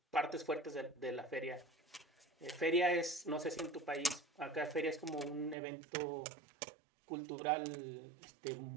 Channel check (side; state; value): left; drops out; at 5.6 s